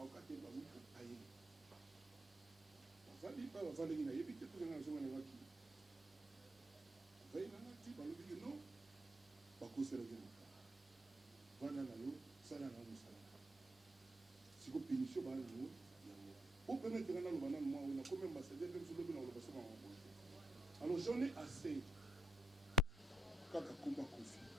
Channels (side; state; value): both; normal; correlation 0.73